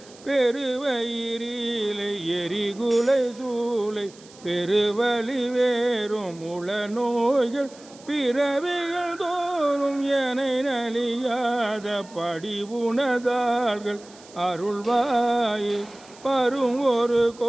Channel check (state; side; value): noise; right; hiss, 23 dB below the sound